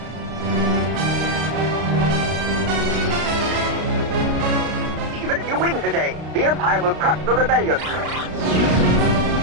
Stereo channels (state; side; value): late; left; 32 ms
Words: Even if you win today, the Empire will crush the rebellion.